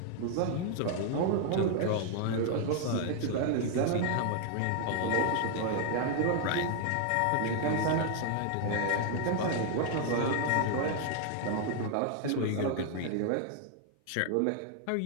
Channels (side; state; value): both; different; correlation 0.00